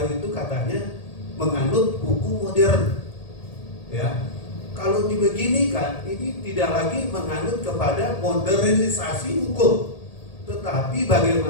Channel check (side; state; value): right; late; 1.8 ms